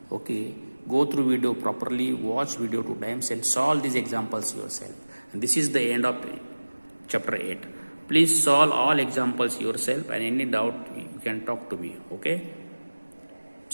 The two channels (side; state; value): both; inverted; correlation -1.00